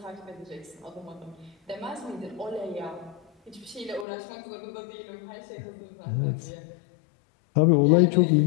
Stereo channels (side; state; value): right; drops out; at 4.0 s